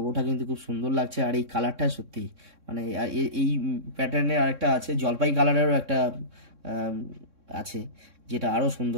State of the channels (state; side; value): late; left; 3.6 ms